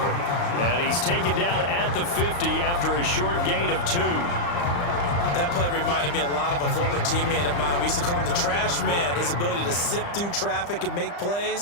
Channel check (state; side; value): late; right; 35 ms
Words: And he's taken down at the 50 after a short gain of 2. That play reminded me a lot of a former teammate of mine. We used to call him the trash man. His ability to sift through traffic and make